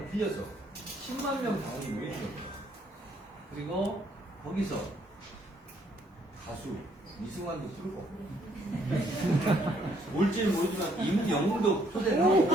빌려서 10만 명 당원이 모이는 겁니다. 그리고 거기서 가수 이승환도 부르고 올지는 모르지만 임영웅도 초대를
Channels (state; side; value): normal; both; correlation 0.67